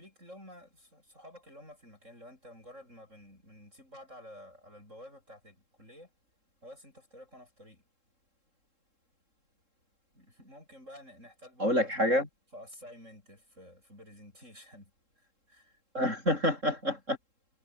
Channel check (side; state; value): left; late; 3.7 ms